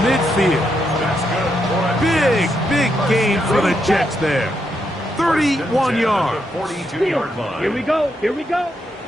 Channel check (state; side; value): normal; both; correlation 0.80